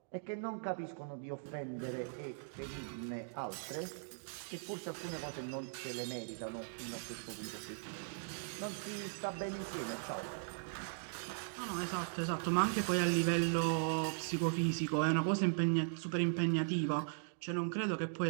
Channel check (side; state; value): left; silent; digital silence